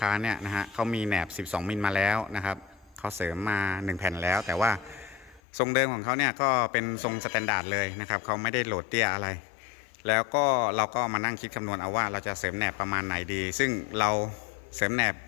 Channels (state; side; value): drops out; right; at 5.4 s